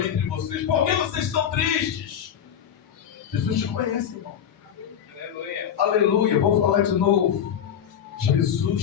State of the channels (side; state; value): right; quieter; 8.9 dB